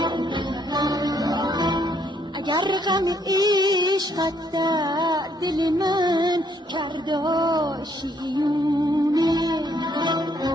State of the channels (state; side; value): normal; both; correlation 0.69